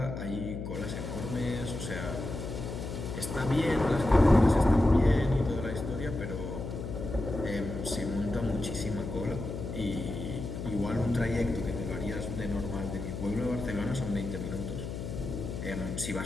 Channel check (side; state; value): left; noise; hum, 6 dB below the sound